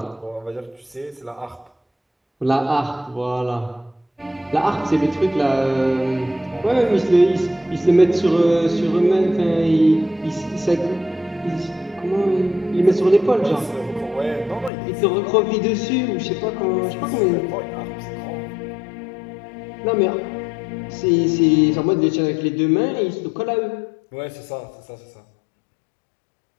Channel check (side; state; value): right; drops out; at 14.7 s